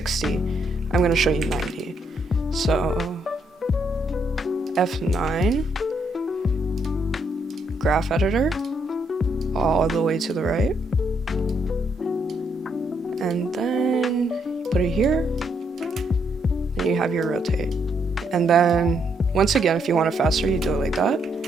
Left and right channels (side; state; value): both; normal; correlation 0.75